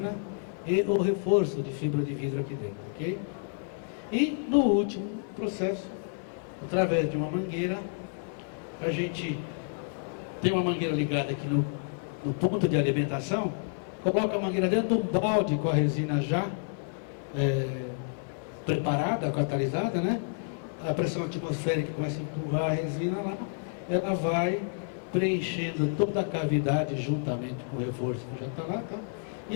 e o reforço de fibra de vidro aqui dentro, ok? E no último processo, através de uma mangueira, a gente tem uma mangueira ligada aqui no ponto de alimentação, coloca a mangueira dentro de um balde com a resina já preparada, catalisada, né? A pressão atmosférica começa a empurrar a resina lá, ela vai preenchendo toda a cavidade juntamente com o reforço que já está lá, tá?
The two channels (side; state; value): right; silent; digital silence